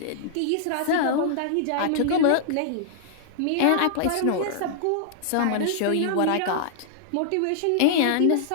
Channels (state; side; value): different; both; correlation -0.01